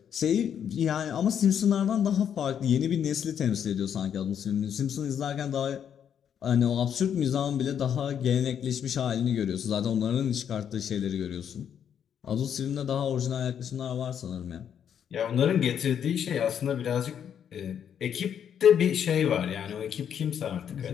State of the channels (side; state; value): right; quieter; 8.6 dB